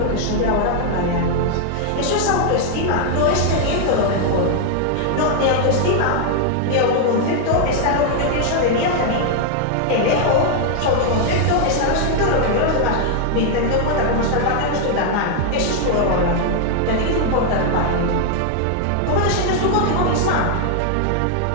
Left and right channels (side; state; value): both; different; correlation 0.00